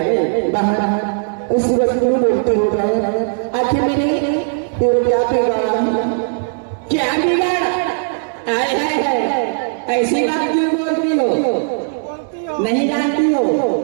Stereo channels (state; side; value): silent; left; digital silence